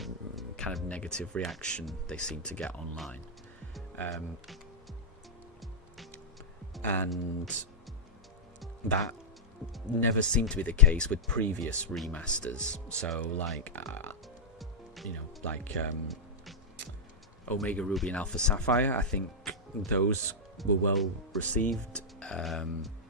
kind of negative reaction they seem to get online. And that never seemed to be the case with previous remasters. So, like, Omega Ruby and Alpha Sapphire, I think those were well received.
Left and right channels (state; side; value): normal; both; correlation -0.09